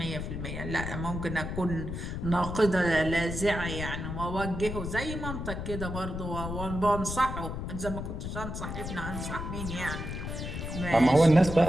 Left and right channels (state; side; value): noise; left; rumble, 5 dB below the sound